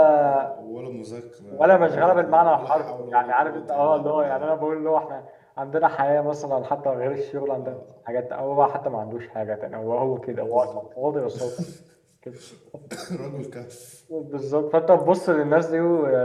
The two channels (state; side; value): identical; both; correlation 1.00